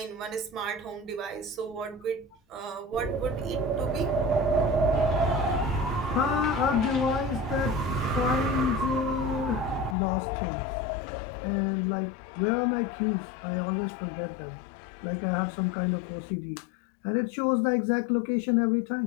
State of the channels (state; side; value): drops out; right; at 10.0 s